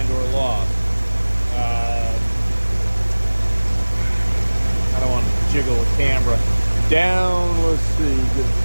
or lost. I don't want to jiggle the camera down. Let's see,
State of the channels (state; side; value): inverted; both; correlation -1.00